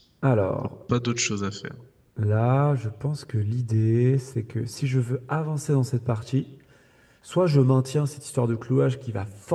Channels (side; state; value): both; identical; correlation 1.00